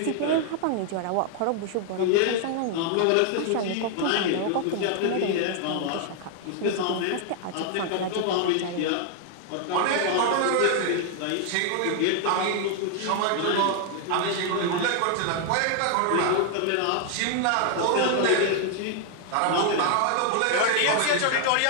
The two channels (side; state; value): both; different; correlation 0.00